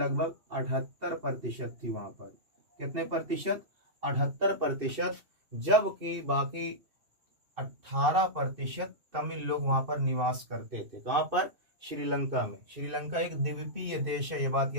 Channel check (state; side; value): late; left; 2.6 ms